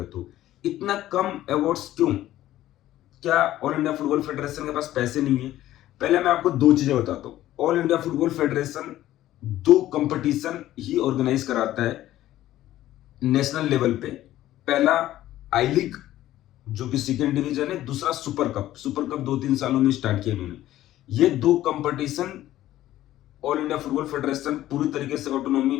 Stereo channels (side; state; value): right; quieter; 14.1 dB